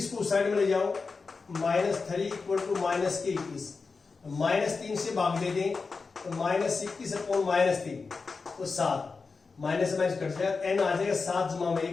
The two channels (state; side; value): quieter; right; 4.5 dB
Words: को साइड में ले जाओ, -3 इक्वल टू -21, -3 से भाग दे दें तो -21 अपॉन -3 तो 7, माइनस से माइनस कट जाएगा, n आ जाएगा 7 जमा में